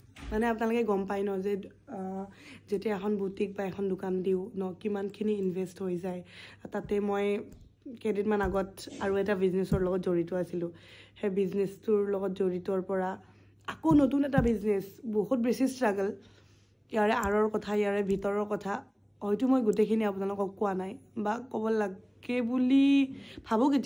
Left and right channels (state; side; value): identical; both; correlation 1.00